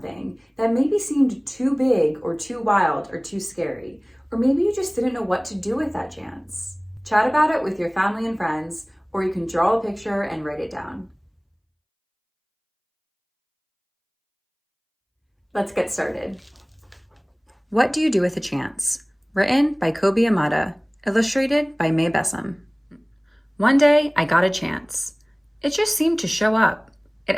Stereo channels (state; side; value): identical; both; correlation 1.00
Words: that maybe seemed too big or too wild or too scary, or maybe you just didn't know what to do with that chance? Chat about it with your family and friends, or you can draw a picture and write it down. Let's get started. What Do You Do with a Chance? Written by Kobe Yamada, illustrated by May Bessam. One day, I got a chance. It just seemed to show up. It